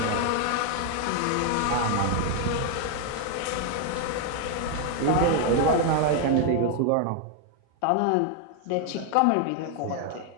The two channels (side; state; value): both; different; correlation 0.00